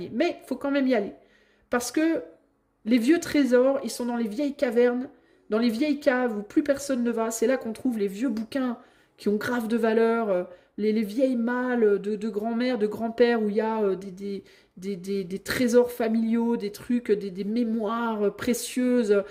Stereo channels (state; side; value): identical; both; correlation 1.00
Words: mais il faut quand même y aller. Parce que les vieux trésors, ils sont dans les vieilles cavernes, dans les vieilles caves où plus personne ne va. C'est là qu'on trouve les vieux bouquins qui ont grave de valeur, les vieilles malles de grand-mère, de grand-père, où il y a des trésors familiaux, des trucs, des mémoires précieuses.